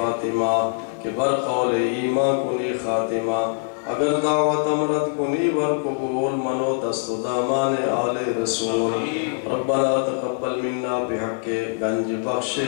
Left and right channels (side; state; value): right; silent; digital silence